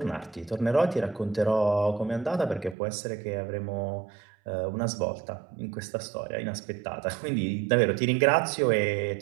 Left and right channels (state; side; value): drops out; left; at 2.8 s